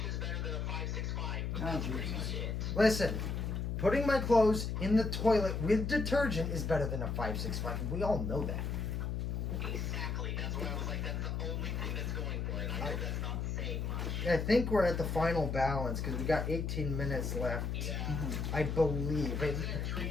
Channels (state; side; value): noise; left; hum, 1 dB below the sound